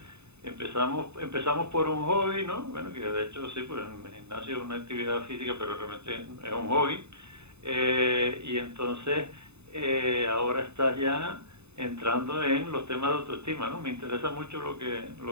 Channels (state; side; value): late; left; 0.81 ms